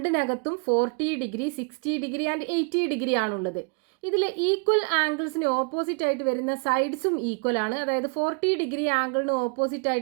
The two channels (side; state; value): left; quieter; 36.0 dB